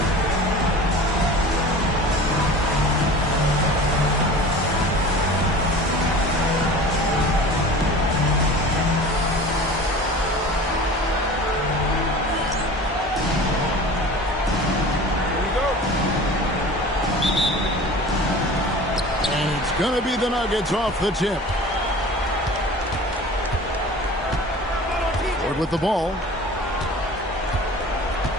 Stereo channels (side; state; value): both; normal; correlation 0.40